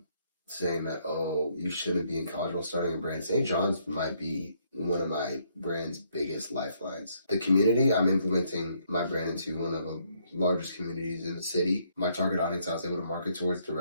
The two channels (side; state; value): both; inverted; correlation -0.71